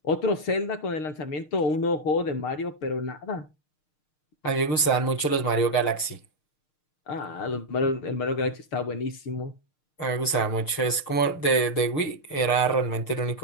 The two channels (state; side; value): late; right; 6.6 ms